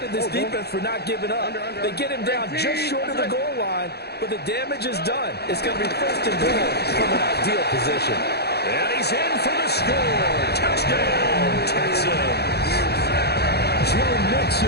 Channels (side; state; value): right; late; 0.47 ms